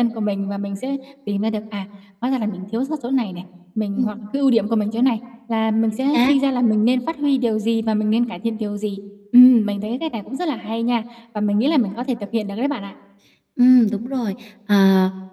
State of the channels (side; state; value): both; identical; correlation 1.00